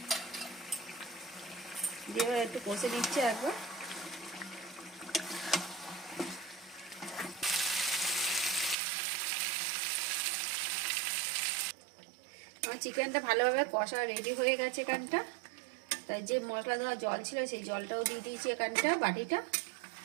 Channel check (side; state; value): left; drops out; at 8.8 s